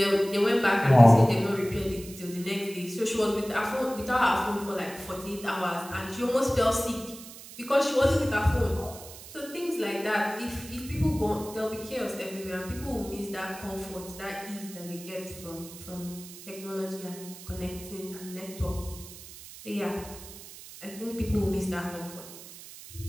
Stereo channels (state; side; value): noise; right; hiss, 15 dB below the sound